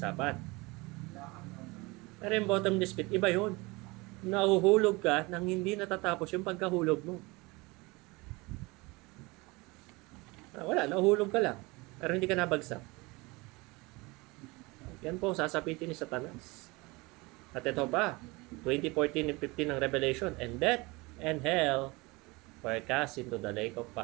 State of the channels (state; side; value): quieter; left; 24.3 dB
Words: Pero yung bottomless pit, iba yun. Nahuhulog ka nang hindi natatapos yung pagkahulog mo. Wala, nahuhulog ka lang. Pero hindi ka nabagsak. Yan po, sasapitin ni Satanas. At ito pa, 20:14 and 15 ng Revelation, and death and hell were cast into the lake of